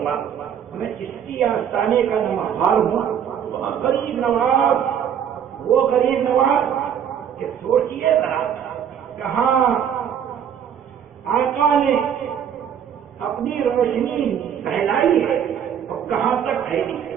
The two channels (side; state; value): left; quieter; 8.7 dB